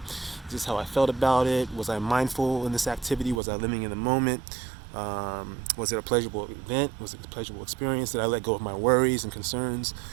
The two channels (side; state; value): left; drops out; at 3.4 s